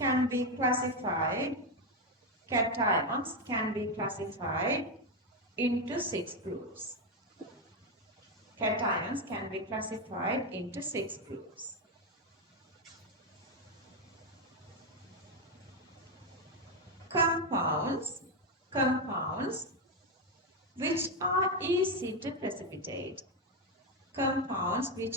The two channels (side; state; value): both; normal; correlation 0.07